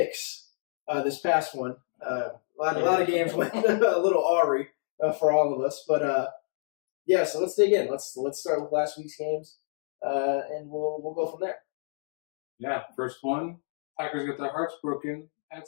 this past one. A lot of games went a little awry for all of us. But, yeah, so let's dig in. Let's start with last week's games, and we'll go from there. Yeah, first one, Packers get their hearts broken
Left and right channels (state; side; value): silent; right; digital silence